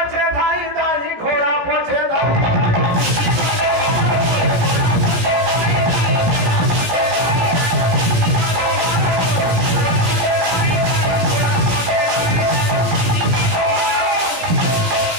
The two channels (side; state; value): left; late; 17 ms